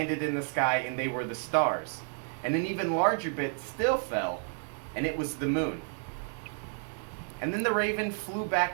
in the sky, and they were the stars. And an even larger bit still fell, and it was the moon. And then the raven flew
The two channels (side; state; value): left; silent; 55 dB below the other